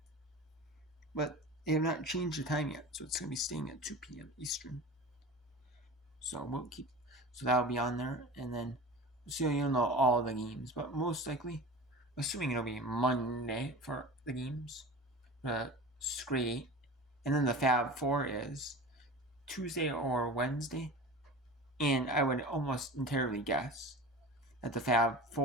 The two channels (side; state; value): both; normal; correlation 0.34